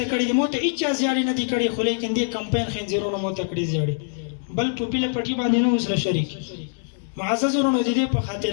کړي دي مو ته هېچا زیاړې نه دي کړي خو لیکن دې کمپاین خنزیرونو مو ته کړي زیاړې بل ټوپي له پټي باندې نه اوس له شریک معزز ورونو د دې په خاطر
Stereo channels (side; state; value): right; silent; digital silence